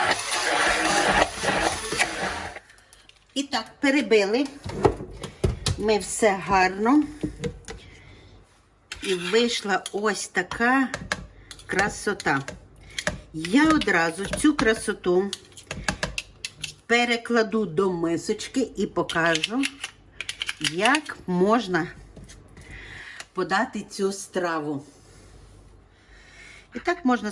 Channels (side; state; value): both; identical; correlation 1.00